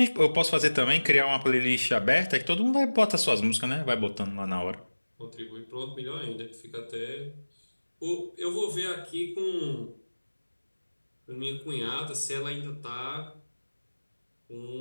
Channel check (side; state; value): both; inverted; correlation -1.00